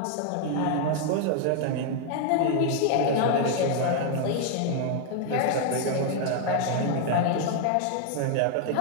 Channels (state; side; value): different; both; correlation 0.00